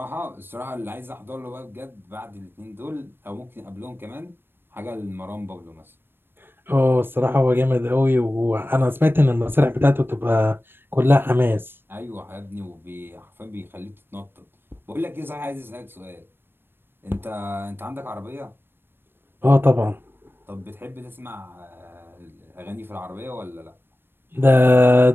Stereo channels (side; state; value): left; late; 0.10 ms